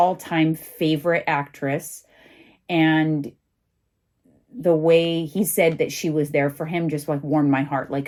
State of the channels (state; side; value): identical; both; correlation 1.00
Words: favorite actress. And the way he said that she was there for him just like warmed my heart. Like,